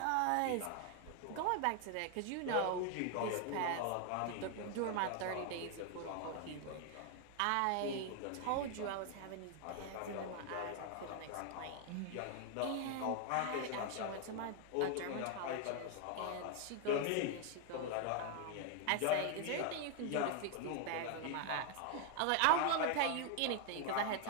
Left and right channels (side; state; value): both; different; correlation 0.00